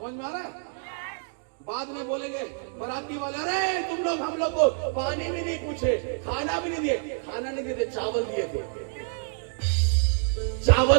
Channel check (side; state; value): left; silent; 60 dB below the other